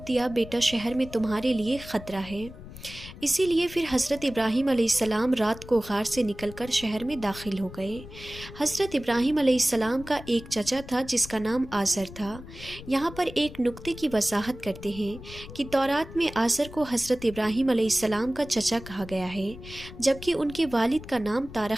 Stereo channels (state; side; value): noise; left; rumble, 15 dB below the sound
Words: दिया, बेटा, शहर में तुम्हारे लिए ख़तरा है। इसीलिए फिर हज़रत इब्राहीम अलैहिस्सलाम रात को गार से निकलकर शहर में दाखिल हो गए। हज़रत इब्राहीम अलैहिस्सलाम का एक चचा था जिसका नाम आज़र था। यहाँ पर एक नुक्ते की वजाहत करते हैं कि तौरात में आज़र को हज़रत इब्राहीम अलैहिस्सलाम का चचा कहा गया है, जबकि उनके वालिद का नाम